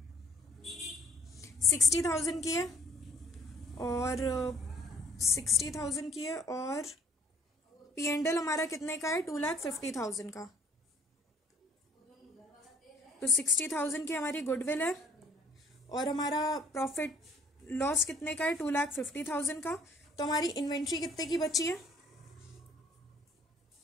60,000 की है, और 60,000 की है, और P&L हमारा कितने का है? 2,50,000 का। तो 60,000 की हमारी गुडविल है, और हमारा प्रॉफिट लॉस कितने का है? 2,50,000 का। तो हमारी इन्वेंट्री कितने की बची है?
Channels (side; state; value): both; normal; correlation 0.57